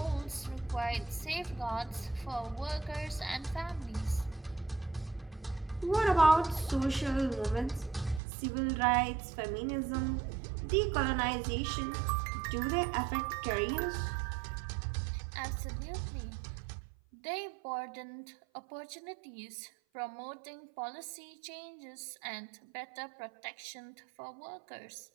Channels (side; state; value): left; drops out; at 8.2 s